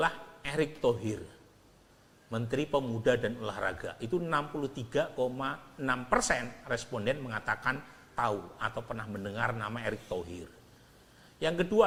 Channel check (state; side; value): identical; both; correlation 1.00